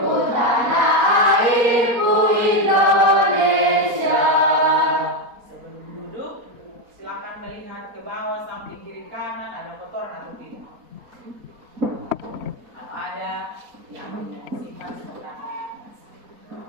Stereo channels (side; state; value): left; late; 4.2 ms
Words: airku Indonesia. Sebelum duduk, silakan melihat ke bawah samping kiri kanan ada kotoran atau tidak. Kalau ada yang sifat seperti apa?